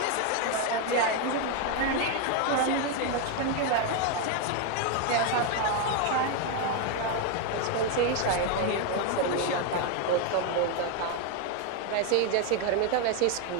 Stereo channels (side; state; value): both; different; correlation 0.01